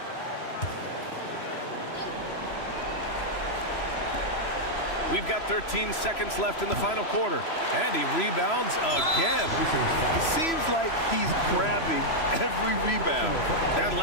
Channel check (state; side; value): late; right; 3.0 ms